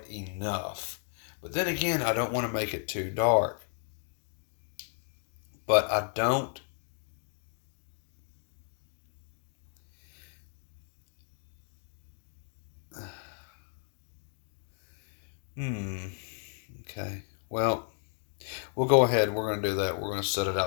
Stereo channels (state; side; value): silent; right; 55 dB below the other